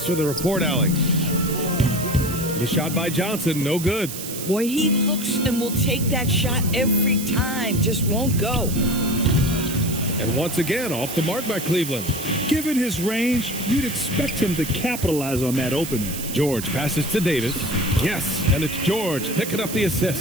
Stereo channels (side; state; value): right; noise; hiss, 8 dB below the sound